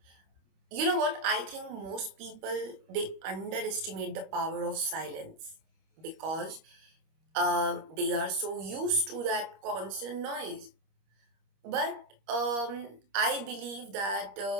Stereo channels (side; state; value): left; late; 25 ms